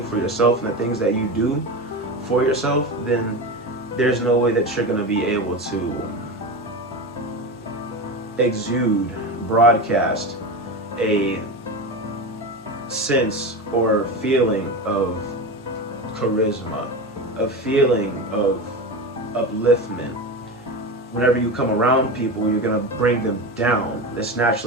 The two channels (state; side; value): normal; both; correlation 0.23